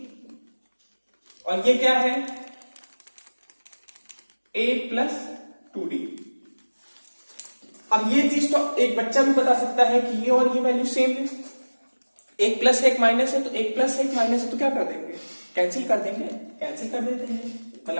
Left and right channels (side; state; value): both; inverted; correlation -1.00